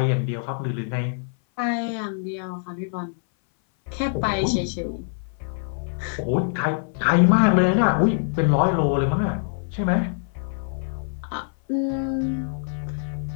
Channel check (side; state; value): right; silent; 58 dB below the other